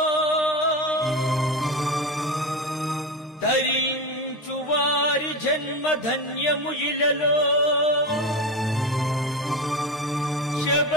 ధరించు వారి జన్మ ధన్యము ఇలలో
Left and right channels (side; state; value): both; normal; correlation 0.21